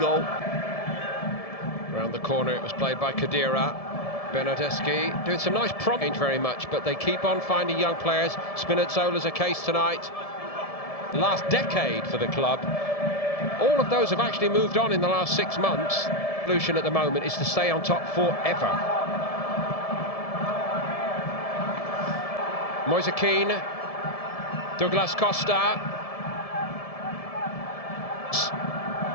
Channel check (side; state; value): right; late; 1.7 ms